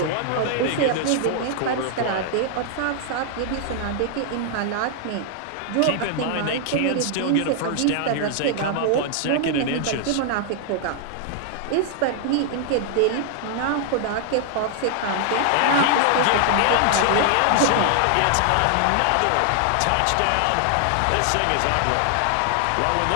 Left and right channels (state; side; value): different; both; correlation 0.00